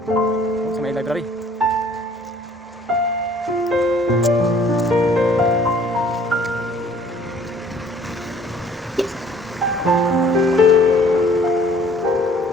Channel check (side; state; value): both; normal; correlation 0.56